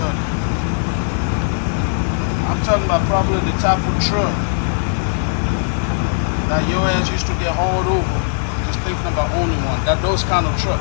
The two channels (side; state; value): right; silent; digital silence